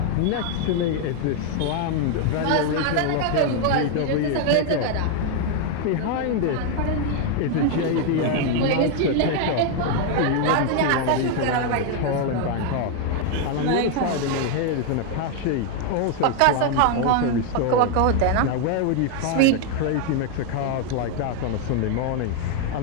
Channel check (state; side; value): different; both; correlation 0.00